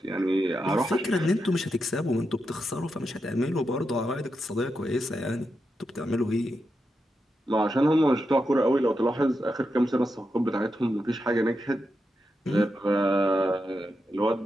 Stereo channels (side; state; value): both; normal; correlation 0.86